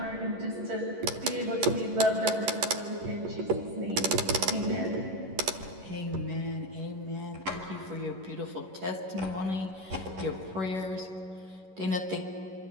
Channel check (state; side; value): late; left; 11 ms